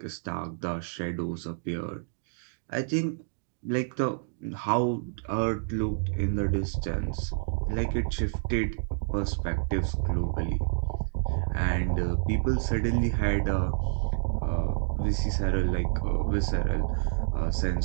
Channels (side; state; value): left; silent; digital silence